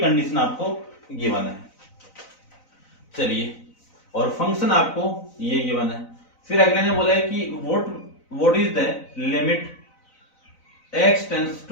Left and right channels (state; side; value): late; right; 4.0 ms